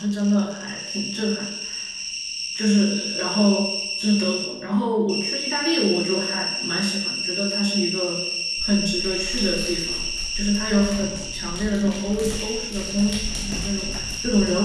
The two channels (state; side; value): identical; both; correlation 1.00